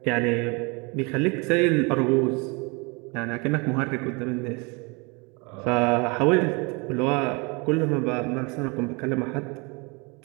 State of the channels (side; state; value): left; quieter; 29.5 dB